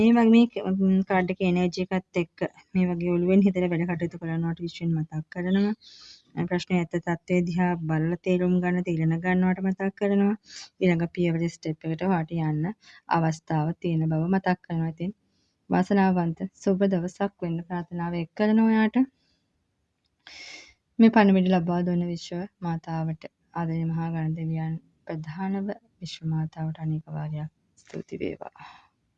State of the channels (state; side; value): identical; both; correlation 1.00